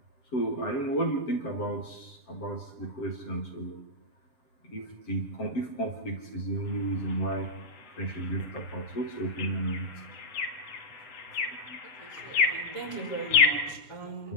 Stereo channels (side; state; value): right; late; 7.7 ms